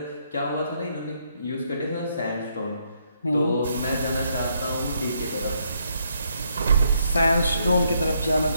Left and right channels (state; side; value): inverted; both; correlation -0.74